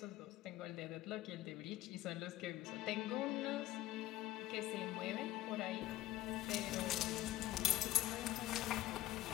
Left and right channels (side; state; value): right; quieter; 15.3 dB